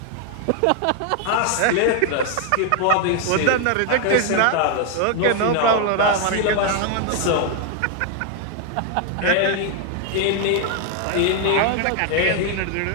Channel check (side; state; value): both; different; correlation 0.00